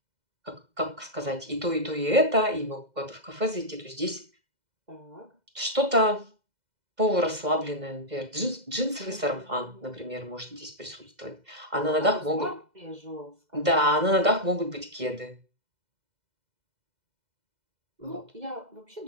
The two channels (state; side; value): late; left; 2.0 ms